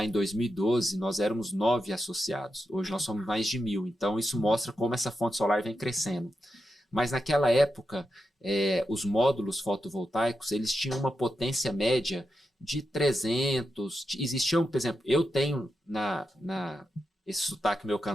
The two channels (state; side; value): normal; both; correlation 0.87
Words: em 2012, nós éramos 9 associados. Hoje nós somos mais de 1.000. Então isso mostra como essa fonte solar vem crescendo. Mas naquela época, os módulos fotovoltaicos, eles tinham uma potência média de 300. Existiam, por exemplo, eu tenho esse sotaque meu